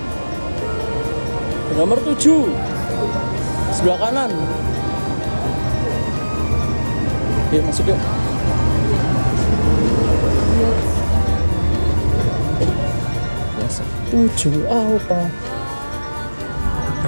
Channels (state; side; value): inverted; both; correlation -1.00